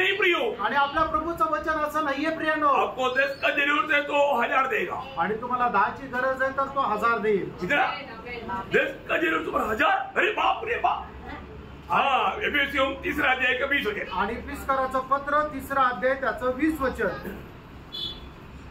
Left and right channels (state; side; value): identical; both; correlation 1.00